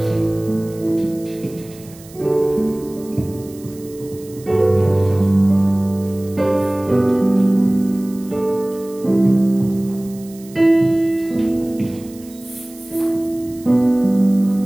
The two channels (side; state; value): right; noise; hiss, 22 dB below the sound